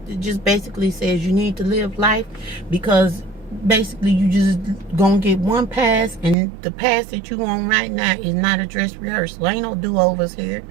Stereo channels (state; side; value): drops out; left; at 6.4 s